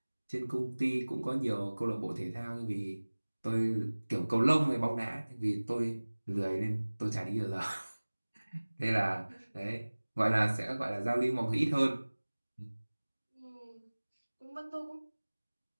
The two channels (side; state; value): both; inverted; correlation -1.00